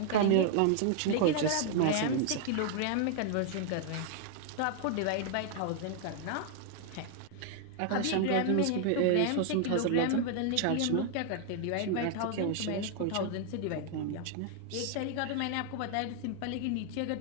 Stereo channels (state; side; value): different; both; correlation 0.00